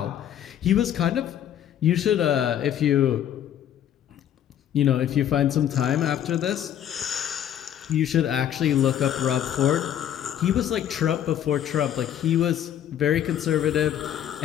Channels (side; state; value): right; quieter; 10.4 dB